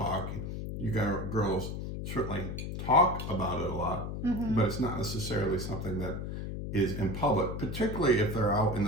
you got girls certainly talk about it a lot, but it's not necessarily something that is in public, particularly if they're out in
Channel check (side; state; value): left; noise; hum, 5 dB below the sound